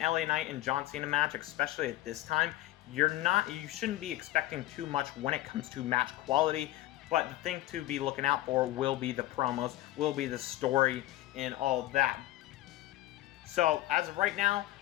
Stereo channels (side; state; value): right; quieter; 16.0 dB